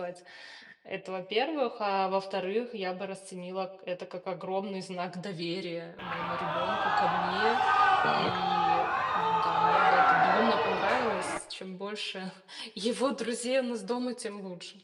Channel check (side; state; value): both; identical; correlation 1.00